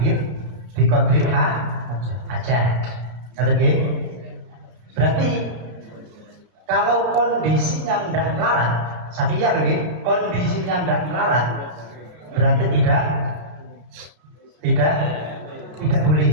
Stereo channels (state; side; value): late; left; 33 ms